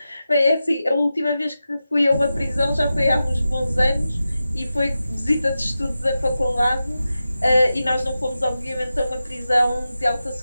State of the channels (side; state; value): both; inverted; correlation -0.92